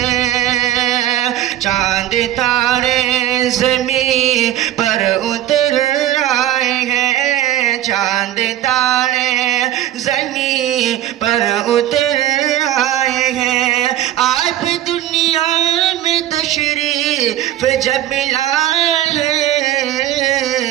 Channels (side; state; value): left; quieter; 12.9 dB